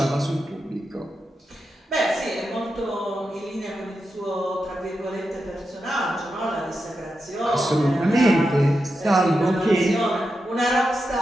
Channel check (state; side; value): normal; both; correlation 0.88